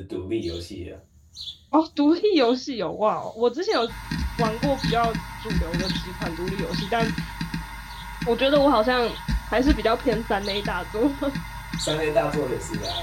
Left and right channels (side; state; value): both; identical; correlation 1.00